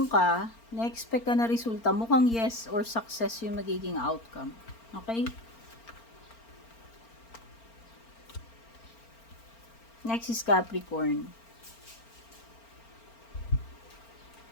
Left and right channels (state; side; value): late; right; 4.4 ms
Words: ka, na-expect ka na resulta, mukhang yes or success yung magiging outcome. Okay? Next is Capricorn.